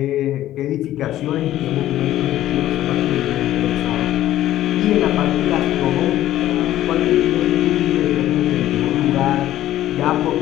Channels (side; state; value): right; quieter; 13.5 dB